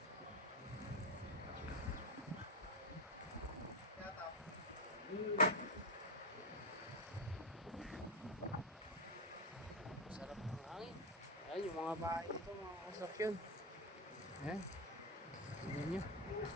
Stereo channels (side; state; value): both; normal; correlation 0.10